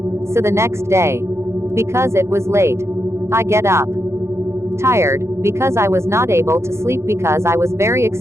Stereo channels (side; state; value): left; late; 0.13 ms